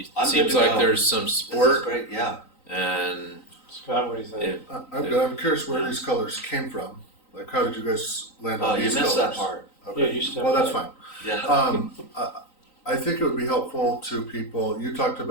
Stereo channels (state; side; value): late; right; 3.9 ms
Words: I'm good seems to like go. there's some This is support, great, yeah. and Scott, what do you think? it, I'm curious where these colors came from. Like, how did you guys land Oh, on you these missed colors? that part. Okay. Yeah, you stepped Well, that's back. fine. Yeah. I think it would be helpful to people. You talked